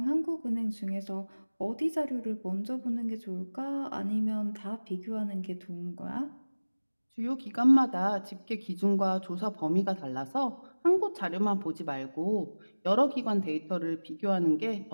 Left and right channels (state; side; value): inverted; both; correlation -1.00